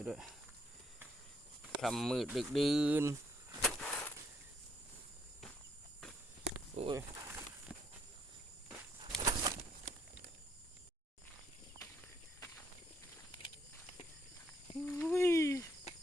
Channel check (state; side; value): normal; both; correlation 0.71